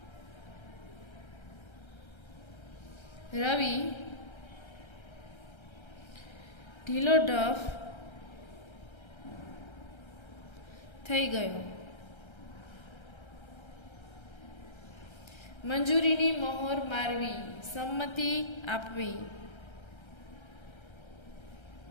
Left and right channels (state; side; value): late; right; 1.3 ms